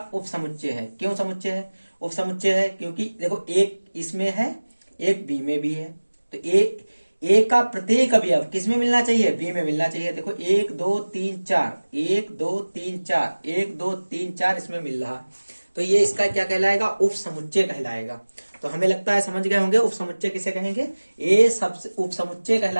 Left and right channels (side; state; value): both; inverted; correlation -1.00